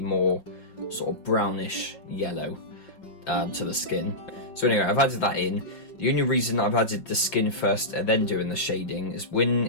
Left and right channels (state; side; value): late; right; 5.4 ms